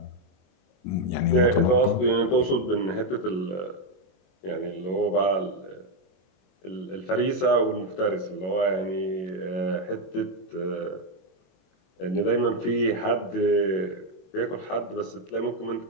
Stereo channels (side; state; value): right; late; 21 ms